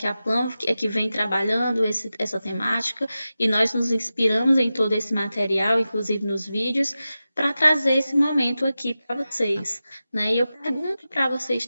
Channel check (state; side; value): inverted; both; correlation -0.94